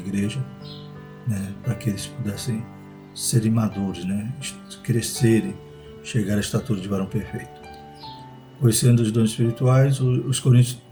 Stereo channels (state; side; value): identical; both; correlation 1.00